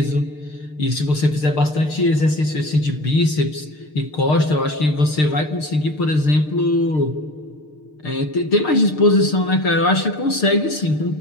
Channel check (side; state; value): right; late; 6.6 ms